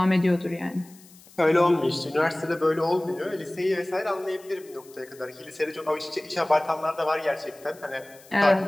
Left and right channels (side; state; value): left; noise; hiss, 24 dB below the sound